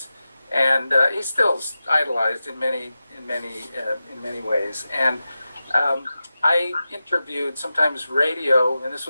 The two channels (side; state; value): both; inverted; correlation -0.93